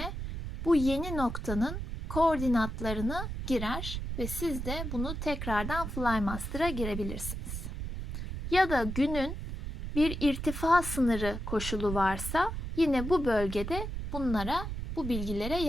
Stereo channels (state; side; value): noise; right; rumble, 6 dB below the sound